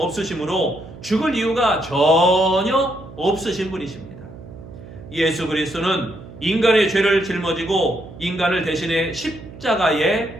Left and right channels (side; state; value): right; noise; hum, 16 dB below the sound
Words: 죽을 이유가 전혀 없으신 분이십니다. 예수 그리스도는 인간의 죄를 짊어지고 인간을 대신해